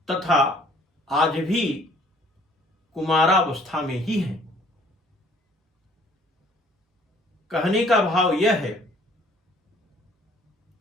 तथा आज भी कुमारावस्था में ही है। कहने का भाव यह है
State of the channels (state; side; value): normal; both; correlation 0.57